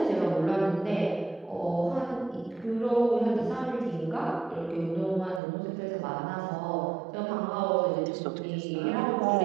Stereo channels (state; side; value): drops out; left; at 5.4 s